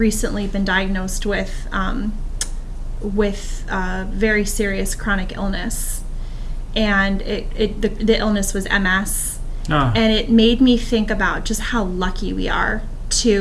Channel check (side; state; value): both; identical; correlation 1.00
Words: been diagnosed with very serious chronic illness, and the illness was MS, and it made me think about just how lucky we are